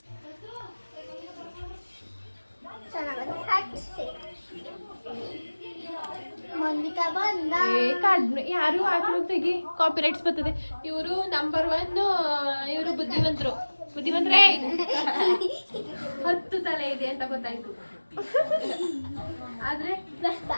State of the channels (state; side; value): inverted; both; correlation -1.00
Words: ಕಡಿಮೆ ಯಾರು ಹಾಕ್ಲು ತೆಗಿ ಕಾಪಿರೈಟ್ಸ್ ಬರ್ತದೆ ಇವರು ನಂಬರ್ 1 ಇವರು ಬುದ್ಧಿವಂತರೇ 10 ತಲೆ ಇದೆ ಅಂತ ಗೊತ್ತಾಯ್ತು ಆದ್ರೆ